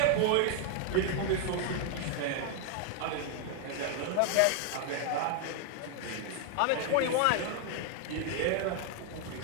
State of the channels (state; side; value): different; both; correlation 0.00